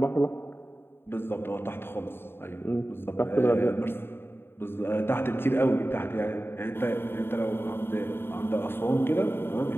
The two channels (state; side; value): late; right; 0.11 ms